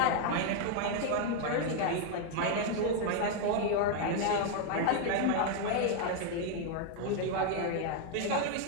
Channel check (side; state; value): both; different; correlation 0.01